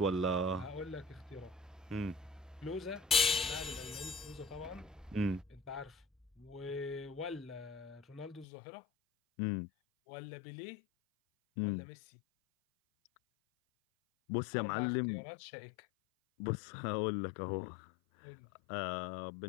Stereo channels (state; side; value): drops out; right; at 8.5 s